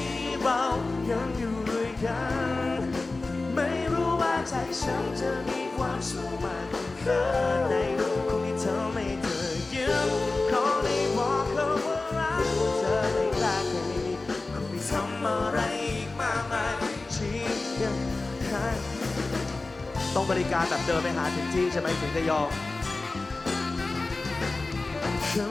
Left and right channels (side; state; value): right; quieter; 3.4 dB